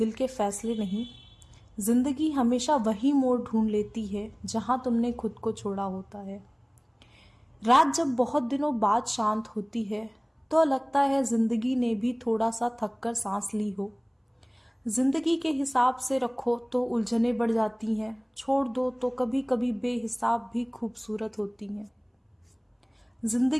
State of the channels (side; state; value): both; identical; correlation 1.00